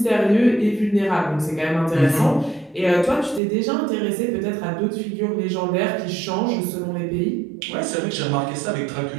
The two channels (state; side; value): drops out; left; at 3.4 s